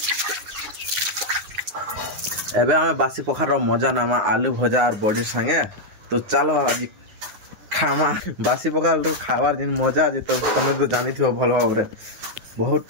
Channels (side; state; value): left; late; 9.6 ms